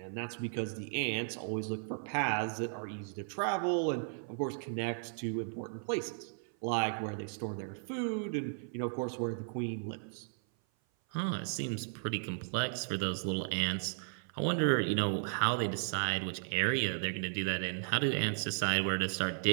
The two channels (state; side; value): silent; left; 54 dB below the other